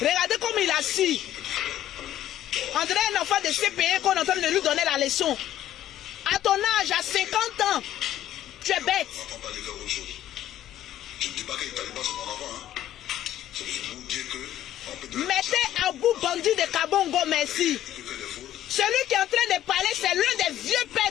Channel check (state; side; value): quieter; right; 12.4 dB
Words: Regardez comme il est assis. On dirait un enfant de CPE qu'on est en train de lui donner la leçon. À ton âge, à 50 ans, tu es bête. On va pas parler de autre chose. Je ne dis pas que les talibans c'est mon enfant. Hein. C'est juste pour vous dire que... Mettez à bout bandit de Kabongo, merci. Celui qui est en train de parler, c'est l'un des vieux